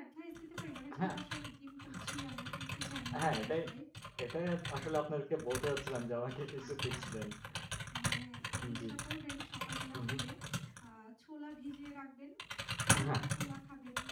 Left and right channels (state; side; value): identical; both; correlation 1.00